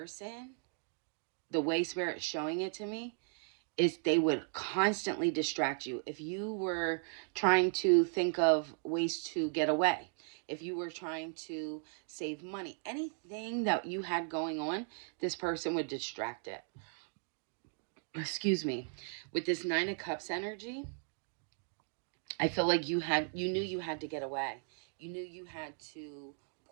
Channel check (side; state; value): left; silent; 53 dB below the other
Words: the way Spirit's showing it to me, is they would constantly distract you. If you were trying to think of ways to get away, if you were trying to save money, anything that you had going on, this person would distract it. Excuse me. With this 9 of Cups energy, I feel like you knew you had to get away. You knew you had to